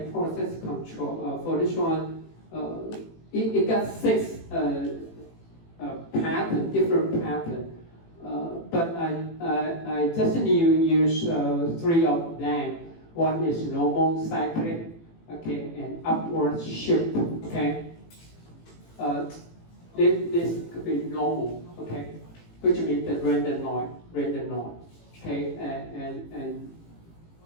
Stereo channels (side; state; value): right; late; 18 ms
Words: process control. For this one, it got 6 pattern, different pattern. But I just need to use 3 of them. One is normal cyclic, okay, and upward shift, okay. This could be normal, okay, which means the random noise, okay,